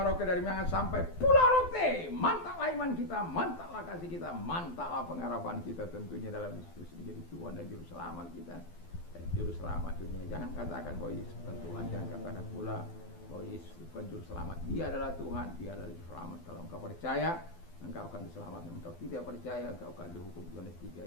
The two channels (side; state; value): right; late; 12 ms